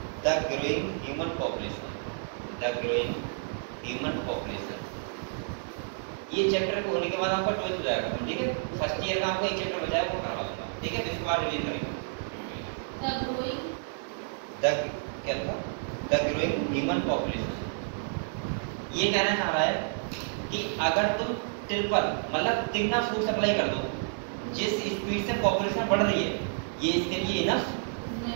the growing human population। ये चैप्टर को होने के बाद आपका 12th हो जाएगा, ठीक है? फर्स्ट ईयर का आपका एक चैप्टर बचा है, वो करवा दूंगा, ठीक है? इसके बाद रिवीजन करेंगे। द ग्रोइंग ह्यूमन पॉपुलेशन, ये कहना चाह रहा है कि अगर तुम ट्रिपल मतलब तिगना फूड सप्लाई कर दो, जिस स्पीड से पॉपुलेशन बढ़ रही है, ये इसके लिए इनफ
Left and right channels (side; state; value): left; silent; digital silence